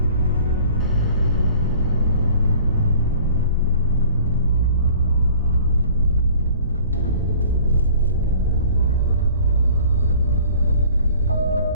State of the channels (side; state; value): both; inverted; correlation -0.49